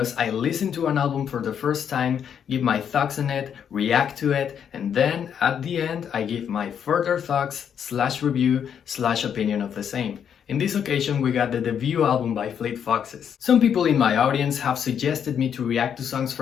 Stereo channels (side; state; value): right; quieter; 8.2 dB